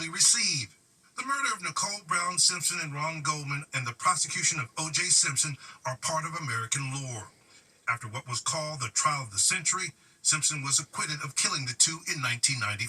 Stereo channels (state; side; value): identical; both; correlation 1.00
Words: receive. The murder of Nicole Brown Simpson and Ron Goldman and the prosecution of O.J. Simpson are part of American lore. After what was called the trial of the century, Simpson was acquitted of killing the two in